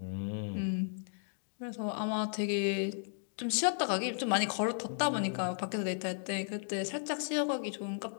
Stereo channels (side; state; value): right; silent; digital silence